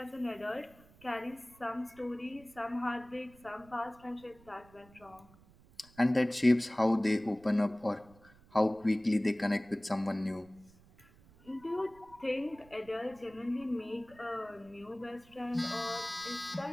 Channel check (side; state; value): right; noise; rumble, 25 dB below the sound